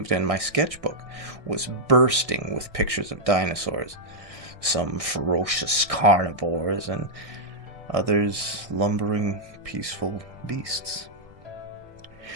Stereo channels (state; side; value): late; left; 1.6 ms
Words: and my sketchbook was bursting with pictures of dinosaurs, some ferocious carnivores and others lumbering, peaceful beasts.